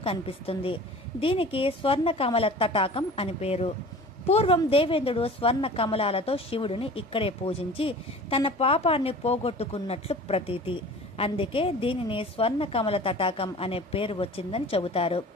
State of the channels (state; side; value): normal; both; correlation 0.41